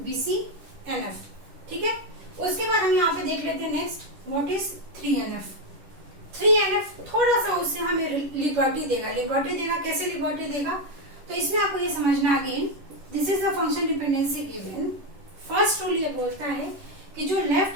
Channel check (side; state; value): left; late; 10 ms